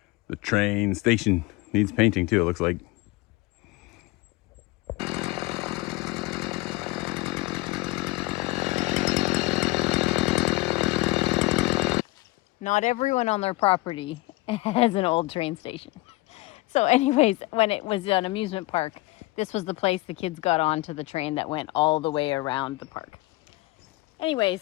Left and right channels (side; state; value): right; quieter; 21.5 dB